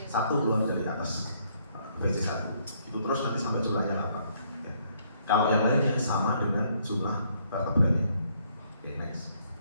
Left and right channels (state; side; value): inverted; both; correlation -0.68